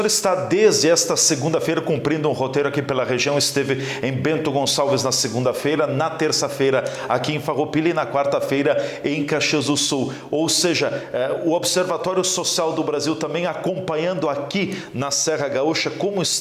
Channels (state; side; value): identical; both; correlation 1.00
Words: está desde esta segunda-feira cumprindo um roteiro aqui pela região, esteve em Bento Gonçalves na segunda-feira, na terça-feira aqui em Farroupilha e na quarta-feira em Caxias do Sul. Ou seja, o Observatório Social do Brasil também acompanhando aqui na Serra Gaúcha como